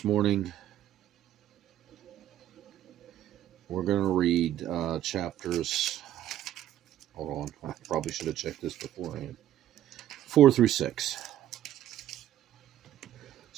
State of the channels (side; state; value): left; quieter; 12.1 dB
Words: morning we're going to read chapters. Hold on. I probably should have checked this beforehand. 4 through 6.